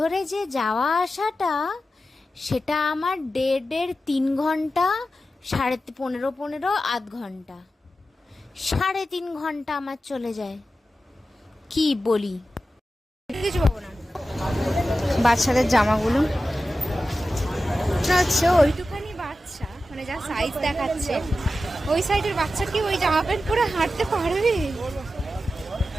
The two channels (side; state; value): both; normal; correlation 0.93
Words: যে যাওয়া আসাটা, সেটা আমার 1.5 ঘন্টা, 15.5 আধ ঘন্টা, 3.5 ঘন্টা আমার চলে যায়। কি বলি, কিছু পাবো না। বাচ্চাদের জামাগুলো হচ্ছে ওইটুখানি বাচ্চা, মানে যা সাইজ দেখাচ্ছে, ওই সাইজের বাচ্চা কি ওই জামা প্যান্ট পরে হাঁটতে পারবে?